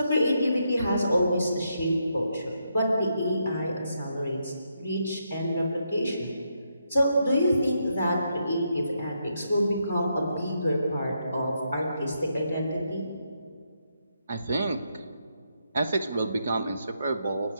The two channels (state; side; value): inverted; both; correlation -0.80